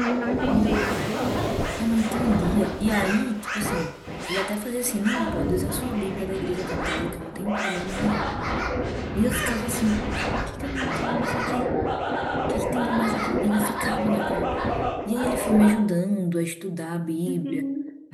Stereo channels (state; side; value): identical; both; correlation 1.00